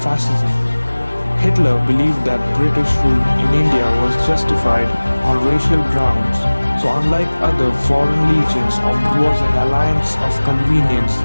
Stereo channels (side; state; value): both; inverted; correlation -1.00